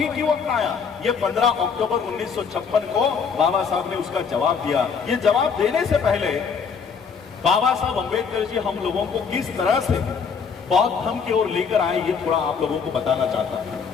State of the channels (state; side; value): quieter; right; 6.0 dB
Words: क्यों अपनाया, ये 15 अक्टूबर 1956 को बाबा साहब ने उसका जवाब दिया। ये जवाब देने से पहले बाबा साहब अंबेडकर जी हम लोगों को किस तरह से बौद्ध धर्म की ओर लेकर आए, ये थोड़ा आप लोगों को बताना चाहता